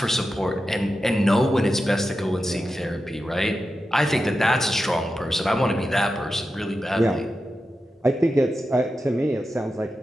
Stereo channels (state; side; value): normal; both; correlation 0.91